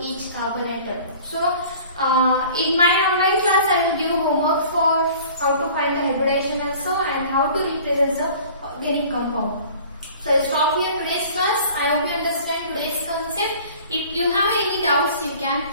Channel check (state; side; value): inverted; both; correlation -0.46